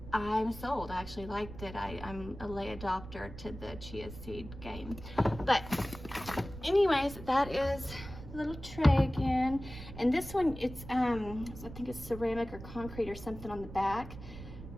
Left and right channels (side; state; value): right; noise; rumble, 13 dB below the sound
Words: I'm sold. I actually liked it. I'm a late adopter to the chia seed game. But anyways, that is a little tray again. And this one, it's I think it's ceramic or concrete or something on the back.